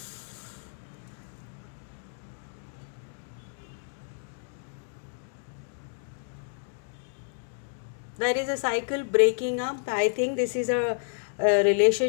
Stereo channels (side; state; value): right; silent; digital silence